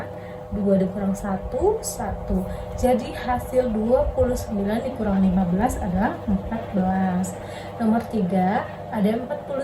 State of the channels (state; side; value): identical; both; correlation 1.00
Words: 2 dikurang 1, 1. Jadi hasil 29 dikurang 15 adalah 14. Nomor 3, ada